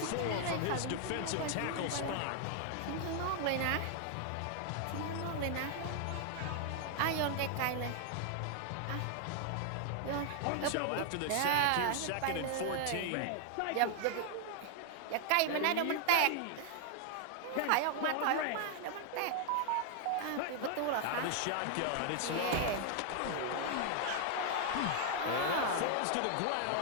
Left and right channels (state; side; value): different; both; correlation 0.00